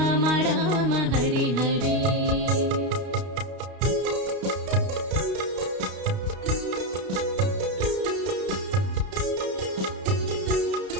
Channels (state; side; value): late; left; 32 ms